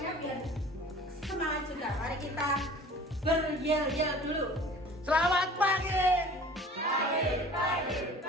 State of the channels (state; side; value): normal; both; correlation 0.45